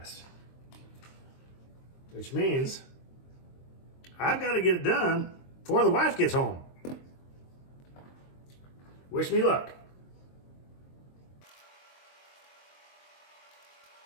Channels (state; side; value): late; right; 23 ms